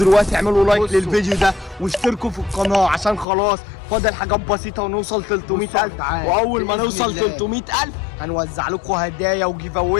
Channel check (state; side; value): drops out; right; at 3.2 s